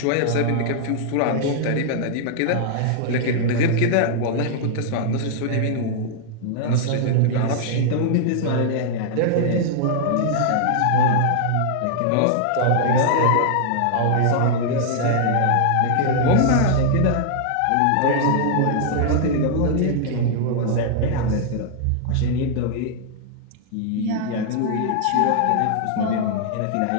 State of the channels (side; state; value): both; different; correlation -0.01